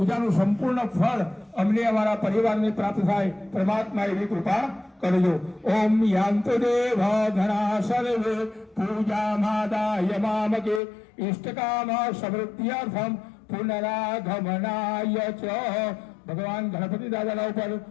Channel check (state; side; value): drops out; right; at 10.8 s